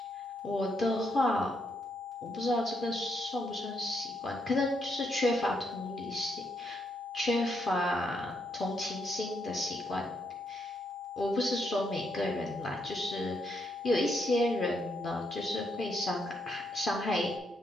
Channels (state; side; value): normal; both; correlation 0.77